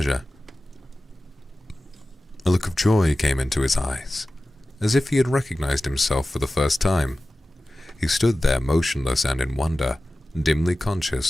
A look of joy came into his eyes, as if he had recognized himself for the first time. He stood there motionless and in wonder, dimly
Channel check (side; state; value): both; normal; correlation 0.95